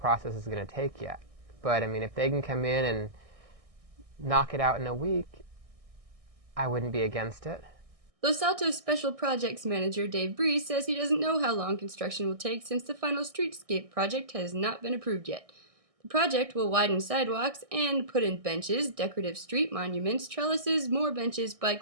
is going to take yet. But I mean, if they can come in and knock it out in a week, I wouldn't be against it. Los Altos Special Projects Manager Dave Breeze says he doesn't know how long construction will take since the final streetscape project has not been approved yet. The project will widen sidewalks and put in benches, decorative street monuments, trellises, more benches,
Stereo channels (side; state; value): left; late; 1.6 ms